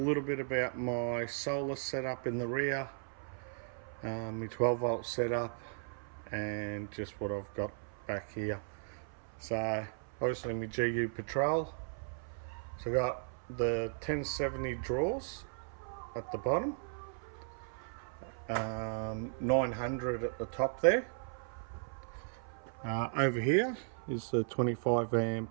bit about my solar setup in the rear, my 12 volt setup, and just what I've got back here. So obviously my GU Patrol, so I got the 1070 drawers at the bottom, 900 at the top there. Over here is the 25 amp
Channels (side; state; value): left; silent; 53 dB below the other